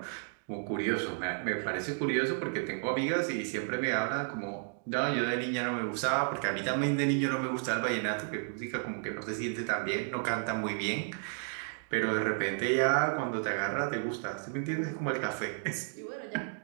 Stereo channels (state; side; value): silent; left; 56 dB below the other